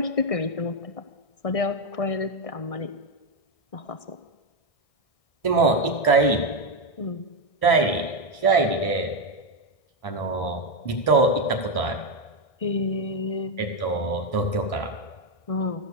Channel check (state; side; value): late; right; 1.6 ms